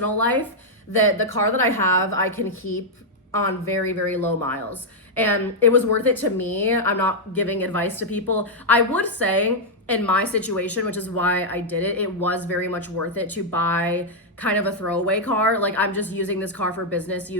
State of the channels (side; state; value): both; normal; correlation -0.03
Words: life, that the car that I have, I can keep on very, very low miles. And it was worth it to me. I'm not giving advice to people. I would say in my situation, which is why I did it, it was very much worth it to buy kind of a throwaway car. Like I'm just using this car for business